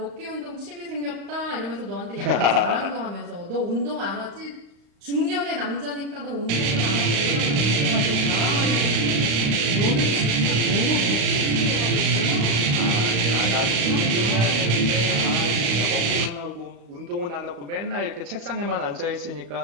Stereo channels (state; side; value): late; left; 35 ms